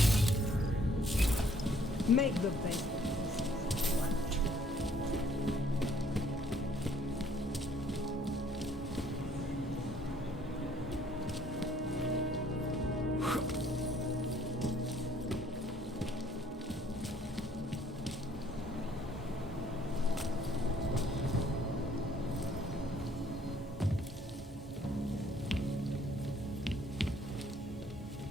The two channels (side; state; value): both; normal; correlation 0.62